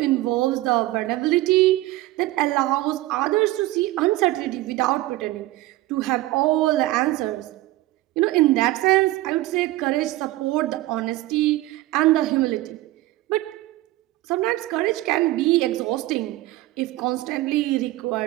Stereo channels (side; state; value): left; quieter; 17.5 dB